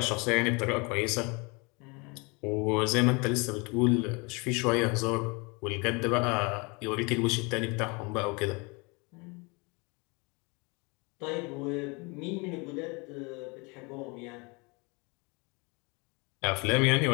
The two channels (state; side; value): quieter; right; 29.1 dB